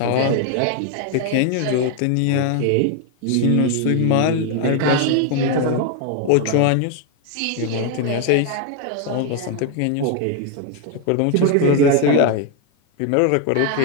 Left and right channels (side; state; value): both; different; correlation 0.01